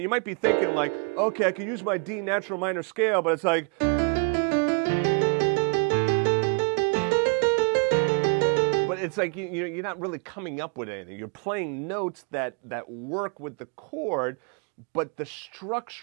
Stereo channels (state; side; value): quieter; left; 36.7 dB